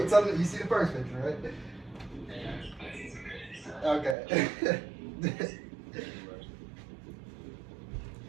till you see the first picture, right? Okay.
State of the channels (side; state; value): left; drops out; at 4.2 s